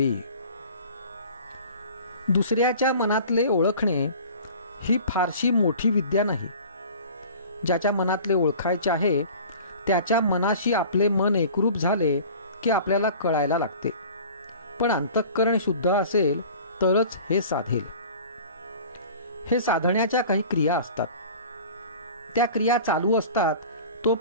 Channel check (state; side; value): inverted; both; correlation -0.43